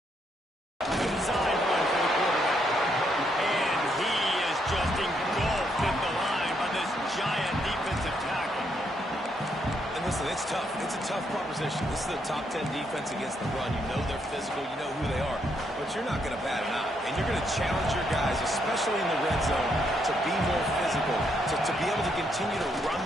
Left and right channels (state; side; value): normal; both; correlation 0.75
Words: design run for the quarterback. And he is just engulfed in the line by this giant defensive tackle. And listen, it's tough. It's a tough proposition. This is a top 10 defense against the run. You know they're physical. You know who they are. But you're not going to bat an eye. And you're going to challenge your guys, especially in the red zone, to be more physical, to be able to continue to run